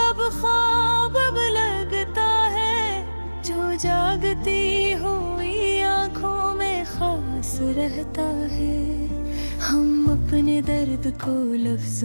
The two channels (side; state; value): both; inverted; correlation -1.00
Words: ख्वाब अब लगता है, जो जागती हुई आँखों में खास रहता है। हम अपने दर्द को